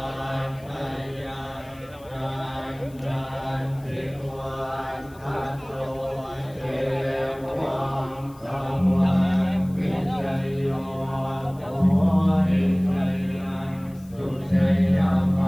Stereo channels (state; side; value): noise; left; hiss, 27 dB below the sound